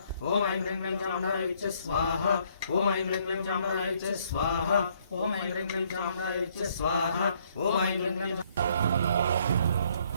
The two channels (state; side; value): inverted; both; correlation -0.66